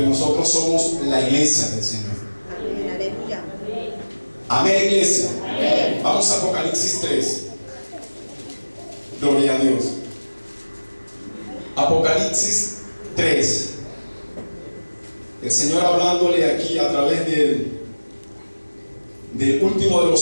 nosotros somos la iglesia del Señor. Amén, iglesia. Amén. Vamos a Apocalipsis 3. Gloria a Dios. Apocalipsis 3. El Señor hablándole aquí a través del último de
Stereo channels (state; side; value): inverted; both; correlation -1.00